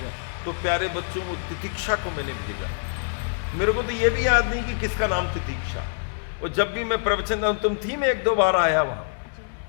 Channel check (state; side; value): silent; right; digital silence